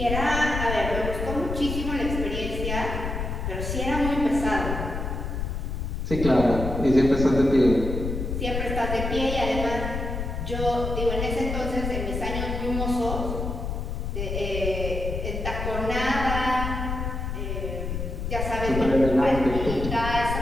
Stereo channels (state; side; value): noise; left; rumble, 3 dB below the sound